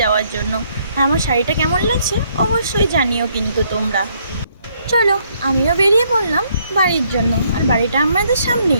যাওয়ার জন্য। আর আমার শাড়িটা কেমন লাগছে অবশ্যই জানিও কিন্তু তোমরা। চলো, আমিও বেরিয়ে পড়লাম বাড়ির জন্য। আর বাড়িটা আমাদের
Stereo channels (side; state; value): both; inverted; correlation -0.69